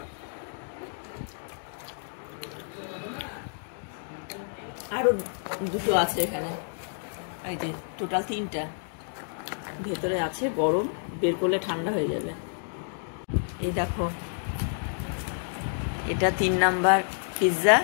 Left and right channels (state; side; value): silent; right; digital silence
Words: আরো 2টো আছে এখানে, এই যে টোটাল 3টা ভেতরে আছে, গরম, বের করলে ঠান্ডা হয়ে যাবে। এই দেখো, এটা 3 নাম্বার পিৎজা।